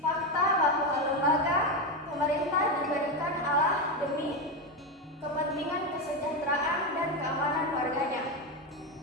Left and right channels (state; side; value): normal; both; correlation 0.12